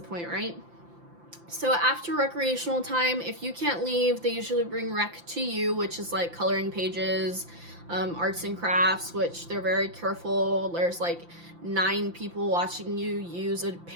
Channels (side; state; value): left; late; 5.8 ms